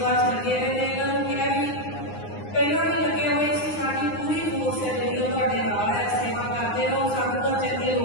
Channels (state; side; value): late; right; 9.7 ms